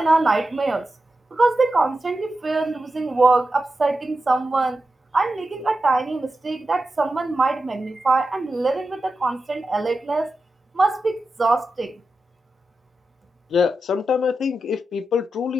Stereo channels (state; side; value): normal; both; correlation 0.91